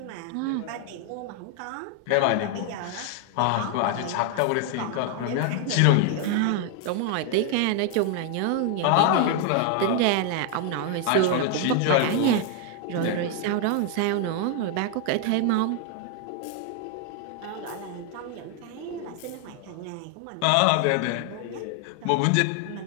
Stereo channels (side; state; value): both; different; correlation 0.00